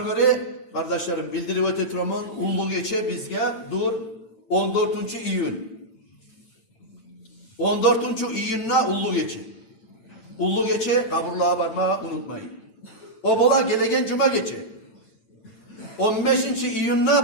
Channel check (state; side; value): late; right; 9.0 ms